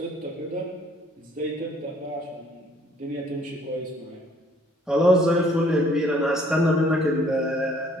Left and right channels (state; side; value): normal; both; correlation 0.60